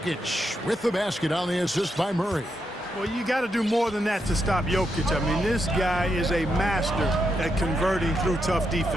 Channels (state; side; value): normal; both; correlation 0.82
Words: with the basket on the assist by Murray. Well, you got to do more than that to stop Jokic. I mean, this guy is a master at converting through tough